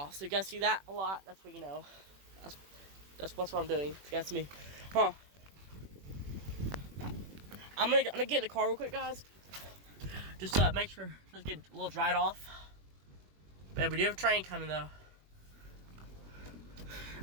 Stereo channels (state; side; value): late; left; 21 ms